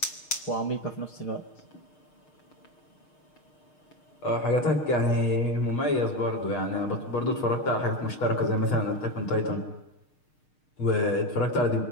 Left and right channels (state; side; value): late; right; 6.6 ms